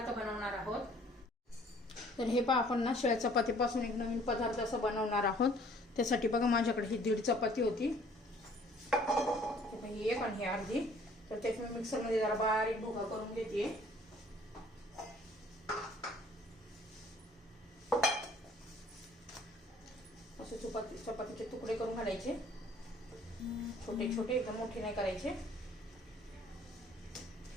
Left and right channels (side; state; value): both; normal; correlation 0.56